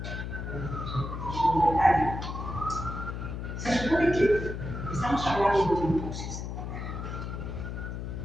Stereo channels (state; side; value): noise; left; hum, 6 dB below the sound